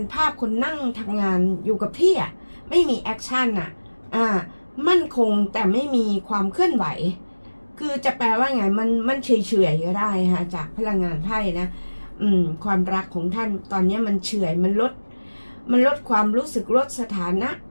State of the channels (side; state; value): both; inverted; correlation -1.00